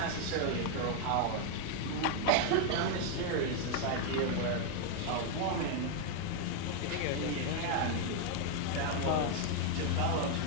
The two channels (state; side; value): different; both; correlation 0.00